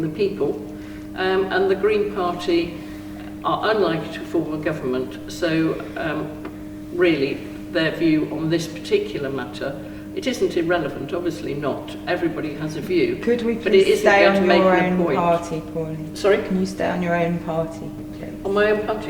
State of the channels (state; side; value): identical; both; correlation 1.00